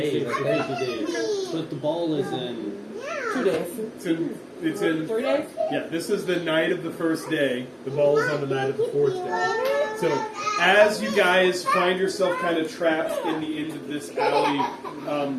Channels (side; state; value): both; identical; correlation 1.00